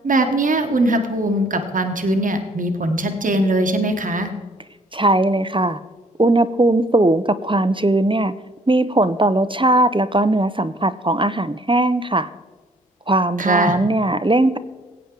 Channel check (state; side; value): normal; both; correlation 0.60